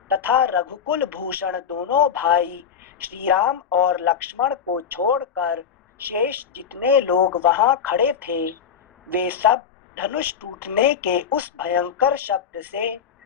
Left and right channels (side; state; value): right; quieter; 7.4 dB